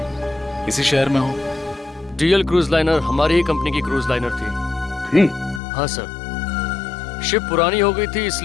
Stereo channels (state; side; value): drops out; right; at 5.6 s